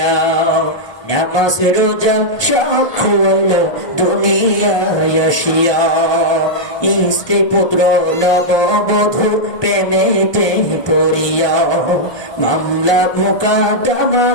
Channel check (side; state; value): right; late; 1.2 ms